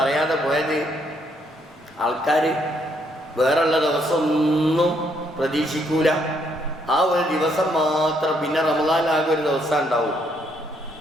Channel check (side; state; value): both; normal; correlation 0.72